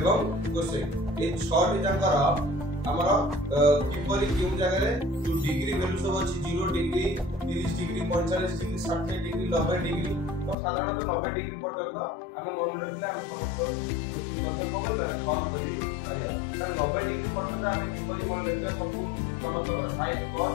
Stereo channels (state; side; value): drops out; right; at 10.6 s